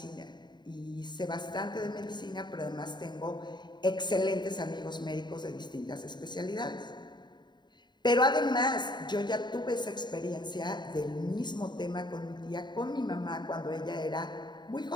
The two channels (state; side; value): late; right; 0.21 ms